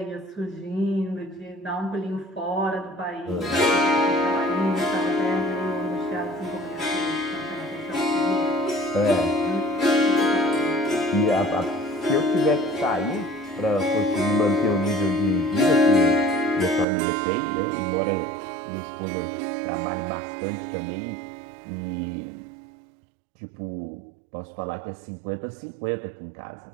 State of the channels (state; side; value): drops out; left; at 16.9 s